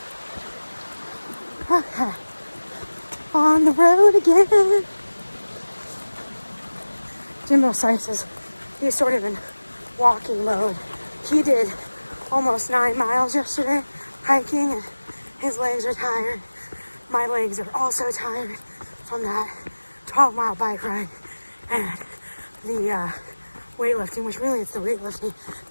okay, on the road again. Jimbo Slice is, he's sort of in walking mode. He did almost 9 miles yesterday hiking, and his legs are tired. My legs are also tired from that 12-mile bike ride and the weightlifting, which really it's the weightlifting.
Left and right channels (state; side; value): inverted; both; correlation -1.00